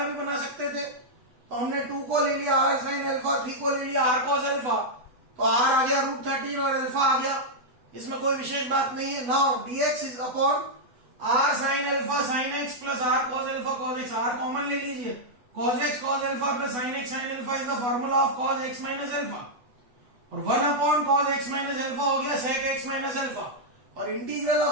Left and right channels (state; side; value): late; left; 8.0 ms